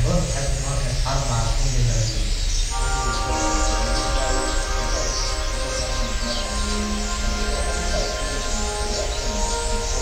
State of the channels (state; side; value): identical; both; correlation 1.00